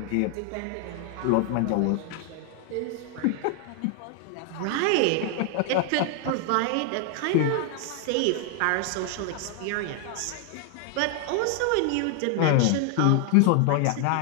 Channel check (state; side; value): different; both; correlation 0.00